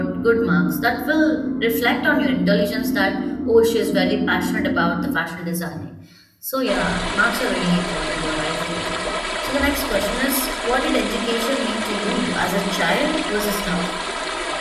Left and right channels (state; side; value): identical; both; correlation 1.00